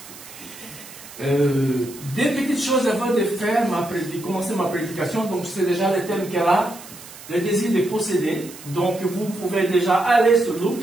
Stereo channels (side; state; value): right; noise; hiss, 17 dB below the sound